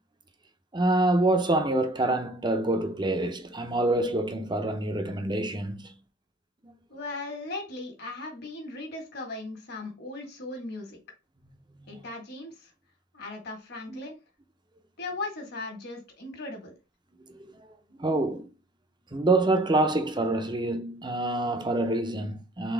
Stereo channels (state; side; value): normal; both; correlation 0.53